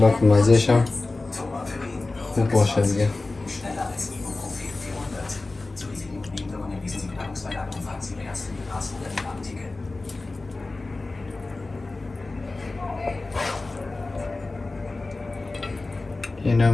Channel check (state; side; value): quieter; right; 3.3 dB